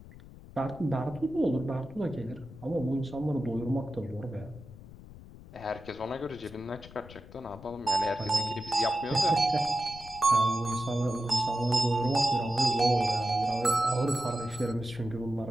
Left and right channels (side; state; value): left; noise; rumble, 17 dB below the sound